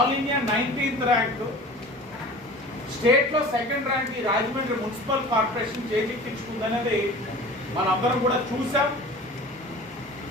ఇండియా 19th ర్యాంక్, స్టేట్లో 2nd ర్యాంక్ ఈ రాజమండ్రి మున్సిపల్ కార్పొరేషన్ చేజిక్కించుకుందనేది మనందరం కూడా చూసాం,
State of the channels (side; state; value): both; normal; correlation 0.40